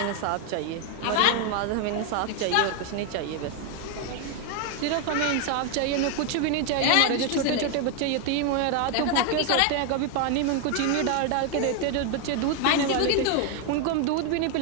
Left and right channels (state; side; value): different; both; correlation 0.01